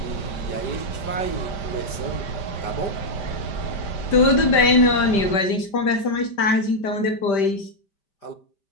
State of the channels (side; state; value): right; late; 5.0 ms